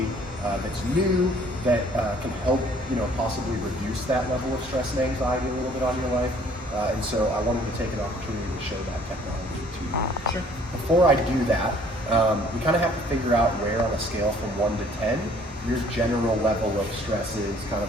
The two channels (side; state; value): both; normal; correlation 0.58